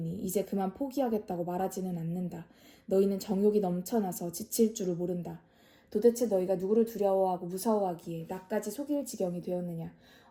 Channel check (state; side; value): identical; both; correlation 1.00